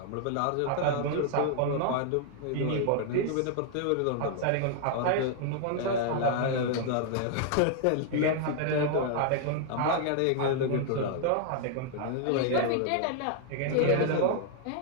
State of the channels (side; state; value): both; different; correlation 0.00